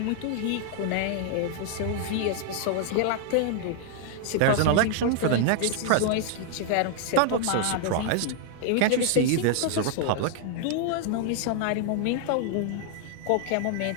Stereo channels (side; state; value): both; different; correlation 0.00